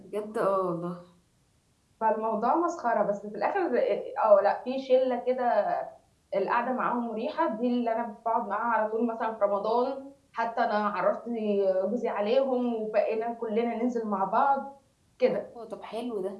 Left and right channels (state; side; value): identical; both; correlation 1.00